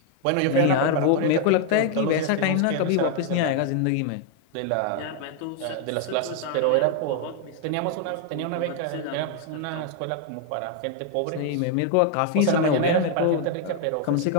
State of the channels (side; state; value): both; different; correlation 0.00